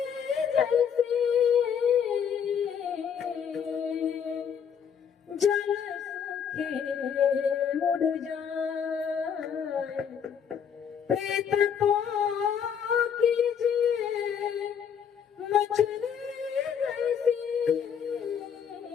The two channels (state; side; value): quieter; right; 7.7 dB